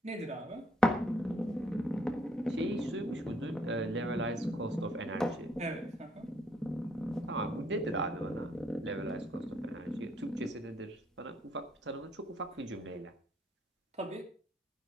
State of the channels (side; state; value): both; normal; correlation 0.68